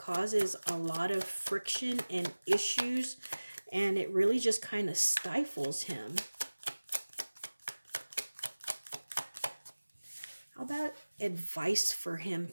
a lot of friction and issues, and it really just kind of stifles him. How about advice for him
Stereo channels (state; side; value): inverted; both; correlation -1.00